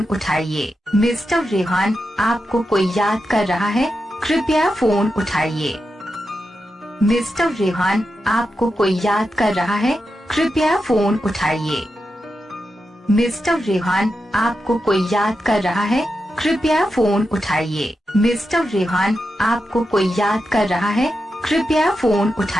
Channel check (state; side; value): normal; both; correlation 0.88